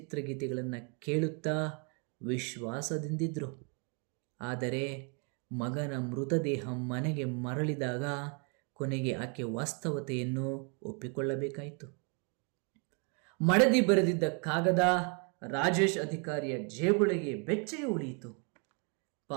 ಕೇಳುತ್ತಾ ವಿಶ್ವಾಸದಿಂದಿದ್ರು. ಆದರೆ ಮಗನ ಮೃತದೇಹ ಮನೆಗೆ ಮರಳಿದಾಗ ಕೊನೆಗೆ ಆಕೆ ವಾಸ್ತವತೆಯನ್ನು ಒಪ್ಪಿಕೊಳ್ಳಬೇಕಾಯಿತು. ಮಡದಿ ಬರೆದಿದ್ದ ಕಾಗದ ರಾಜೇಶ್ ಅಧಿಕಾರಿಯ ಜೇಬೊಳಗೆ ಬೆಚ್ಚಗೆ ಉಳಿಯಿತು.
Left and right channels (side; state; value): left; quieter; 36.9 dB